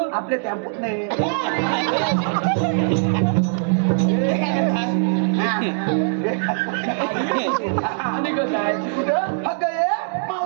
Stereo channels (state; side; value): silent; left; digital silence